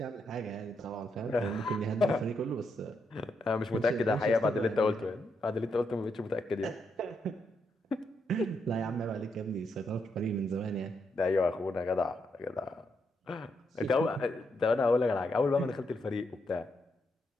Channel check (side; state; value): both; normal; correlation 0.80